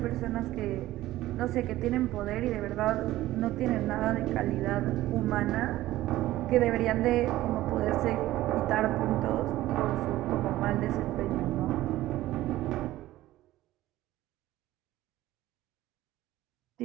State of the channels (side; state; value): left; quieter; 15.7 dB